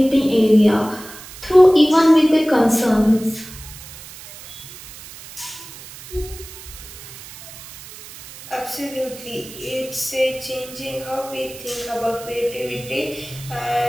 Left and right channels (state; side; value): noise; right; hiss, 16 dB below the sound